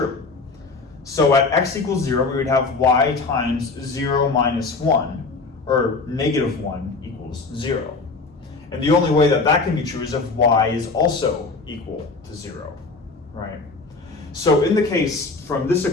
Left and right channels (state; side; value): quieter; right; 4.0 dB